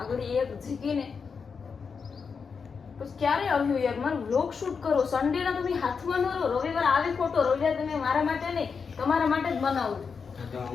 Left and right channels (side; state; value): right; quieter; 5.6 dB